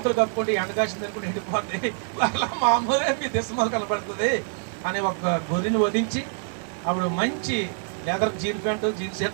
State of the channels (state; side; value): silent; left; 61 dB below the other